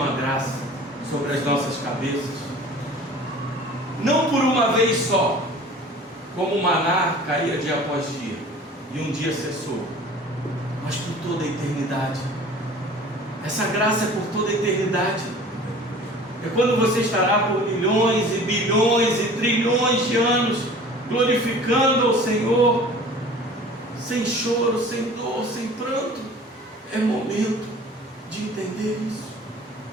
graça sobre as nossas cabeças, não por uma vez só, como o maná caía dia após dia, e um dia cessou, mas por toda a eternidade. Essa graça é por toda a eternidade. É quando você estará por milhões e bilhões e trilhões de anos glorificando ao Senhor, sem choro, sem dor, sem pranto. É momento de entender isso,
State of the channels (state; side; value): normal; both; correlation 0.45